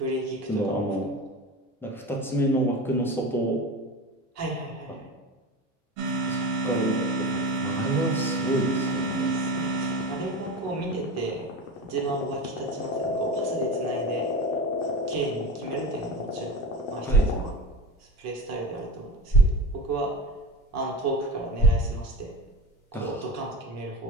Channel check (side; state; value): both; normal; correlation 0.26